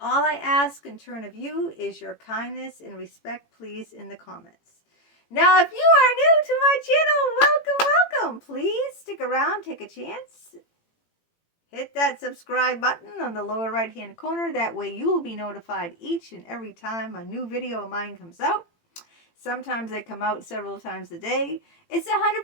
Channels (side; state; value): right; late; 18 ms